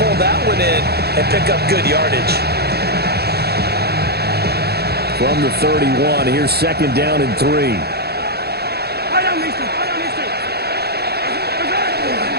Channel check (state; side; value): late; left; 0.47 ms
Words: that one in and pick up good yardage? From the 31, here's 2nd down and 3.